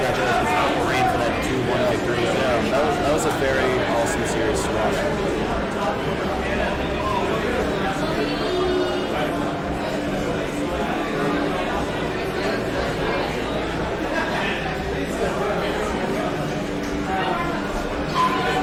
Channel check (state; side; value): identical; both; correlation 1.00